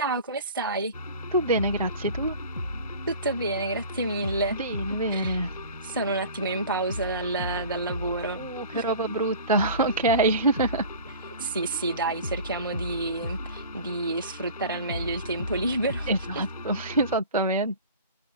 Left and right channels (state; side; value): inverted; both; correlation -0.41